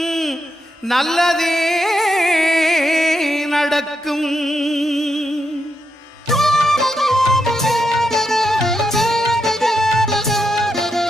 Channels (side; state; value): both; normal; correlation 0.83